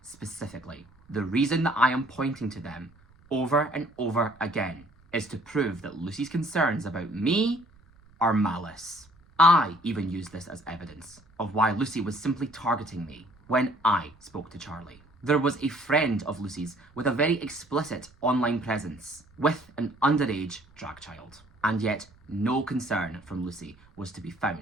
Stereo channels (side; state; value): right; noise; rumble, 28 dB below the sound